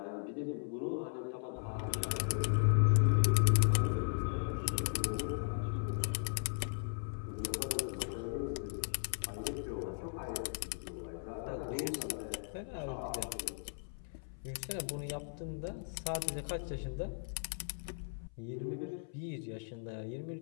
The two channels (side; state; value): right; silent; 53 dB below the other